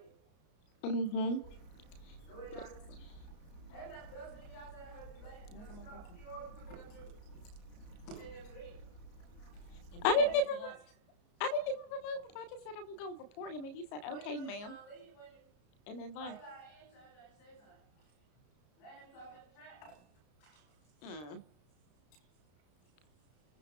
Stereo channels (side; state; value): right; late; 33 ms